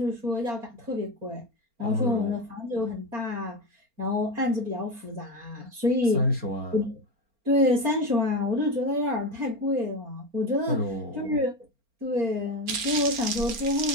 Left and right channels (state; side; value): late; left; 4.3 ms